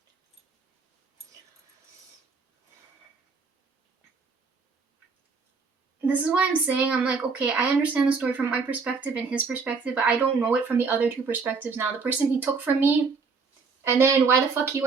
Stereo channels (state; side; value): quieter; left; 4.8 dB